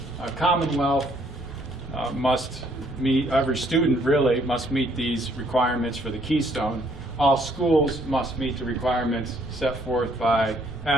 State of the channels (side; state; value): left; noise; rumble, 21 dB below the sound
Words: Commonwealth must meet, every student really must meet these requirements for the Keystone. All schools must meet the requirements set forth by